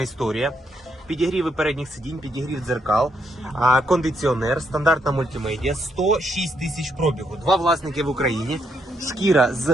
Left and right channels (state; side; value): normal; both; correlation 0.77